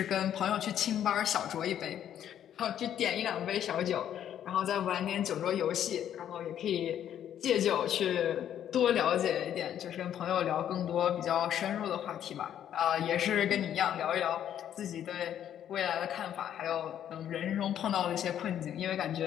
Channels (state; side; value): quieter; right; 10.2 dB